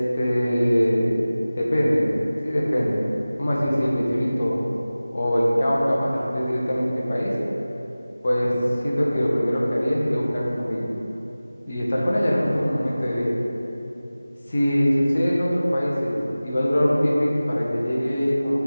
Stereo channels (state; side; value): inverted; both; correlation -0.97